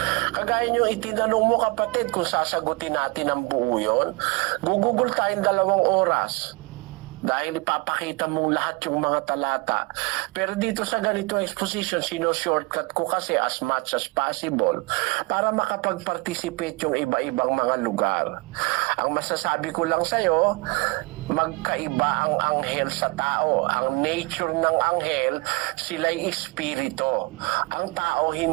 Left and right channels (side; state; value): left; quieter; 27.2 dB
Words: kagaya nyo itinanong mo kapatid kung sasagutin natin ang buo yun, gugugol tayong 2 oras. Dahil ipapakita mo lahat yung mga talata. Pero dito sa ganitong exposition, shortcut ko kasi as much as possible para makapag-participate yung iba-ibang mga lugar. Ang masasabi ko lang sa'yo, magkaiba ang anghel sa tao. Ang nature ng anghel, sila'y espiritu. Ang tao